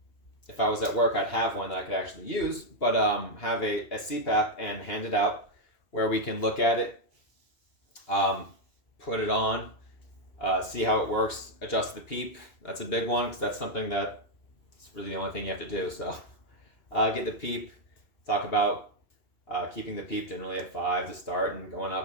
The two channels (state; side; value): late; right; 2.8 ms